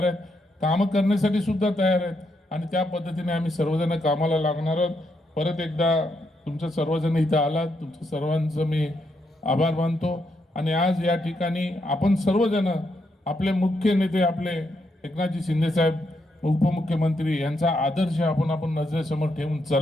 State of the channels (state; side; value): normal; both; correlation 0.79